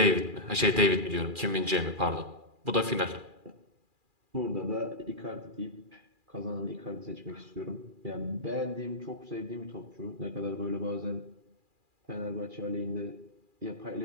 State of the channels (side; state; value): left; late; 2.4 ms